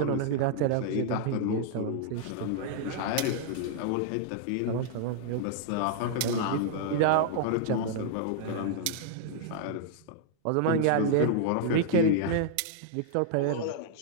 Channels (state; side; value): different; both; correlation -0.01